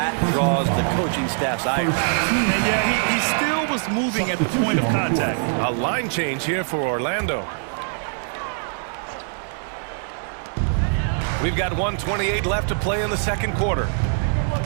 draws the coaching staff's ire. And yeah, he still was moving at the point of contact. A line change here for Orlando. We've got 1:28 left to play in the second quarter.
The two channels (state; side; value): silent; left; 61 dB below the other